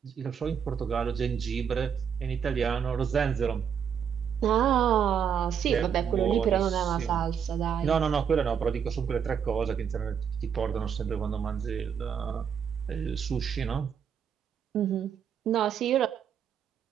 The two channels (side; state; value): left; quieter; 7.7 dB